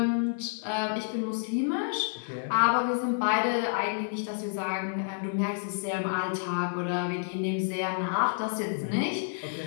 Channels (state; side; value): silent; right; 58 dB below the other